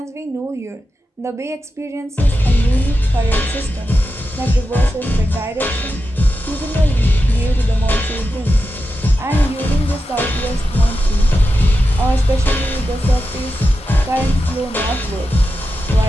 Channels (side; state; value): both; normal; correlation 0.90